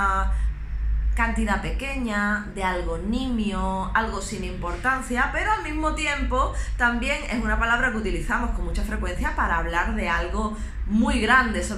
cantidad pequeña, de algo nimio, algo sin importancia, pero al mismo tiempo también es una palabra que utilizamos con mucha frecuencia para hablar de algo muy grande,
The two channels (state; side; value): identical; both; correlation 1.00